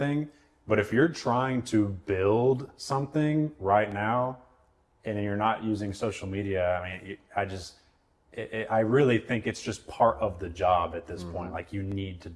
But if you're trying to build something right now and you're not using social media, I mean, I really think it's just part of the job at this point. Like, you need to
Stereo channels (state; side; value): identical; both; correlation 1.00